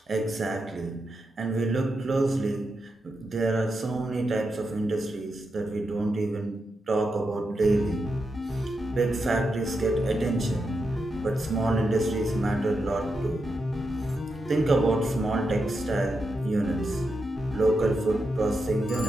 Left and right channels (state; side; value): normal; both; correlation 0.86